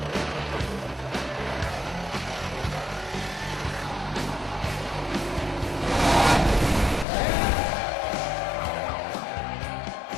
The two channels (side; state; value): right; drops out; at 7.1 s